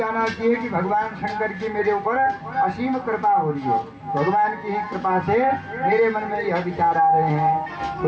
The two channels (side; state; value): both; identical; correlation 1.00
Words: चाहिए कि भगवान शंकर की मेरे ऊपर असीम कृपा हो रही है, भगवान की ही कृपा से मेरे मन में यह विचार आ रहे हैं। तो